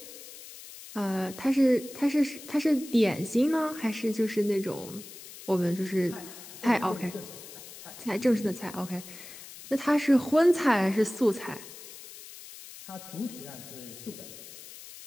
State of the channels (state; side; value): noise; left; hiss, 15 dB below the sound